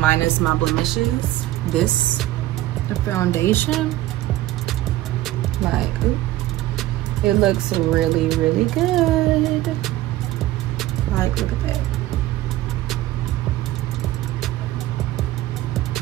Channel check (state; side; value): quieter; left; 15.6 dB